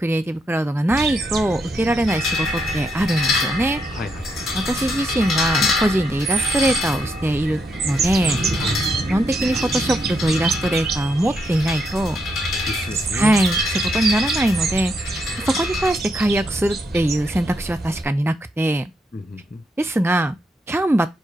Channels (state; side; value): normal; both; correlation 0.79